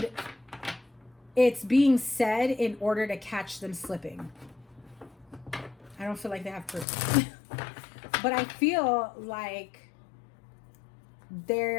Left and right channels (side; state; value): right; drops out; at 6.9 s